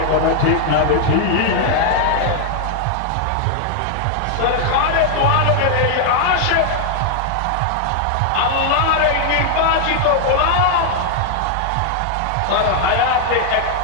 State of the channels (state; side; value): different; both; correlation 0.00